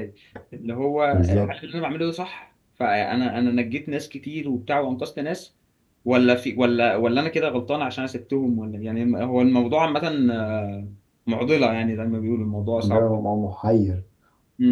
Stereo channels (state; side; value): identical; both; correlation 1.00